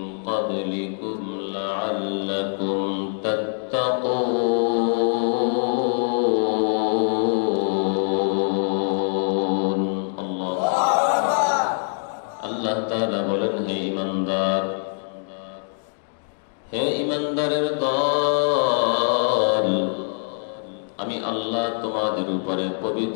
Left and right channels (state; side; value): silent; right; digital silence